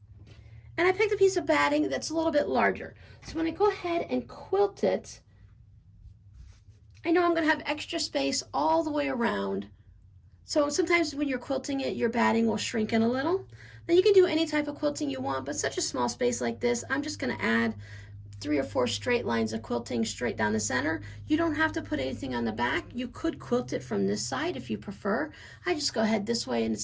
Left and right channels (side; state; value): both; identical; correlation 1.00